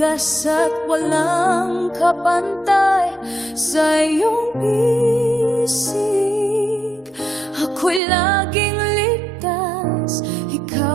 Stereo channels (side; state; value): left; drops out; at 8.0 s